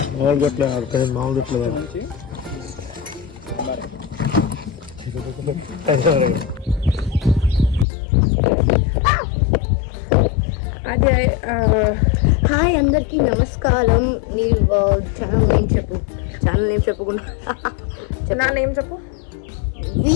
అదే. హాయ్ అందరికి నమస్కారం. నీ ఛానల్ నేమ్ చెప్పు. ఛానల్ నేమ్ చెప్పకుండా నా నేమ్ చెప్పు.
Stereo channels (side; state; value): right; drops out; at 7.9 s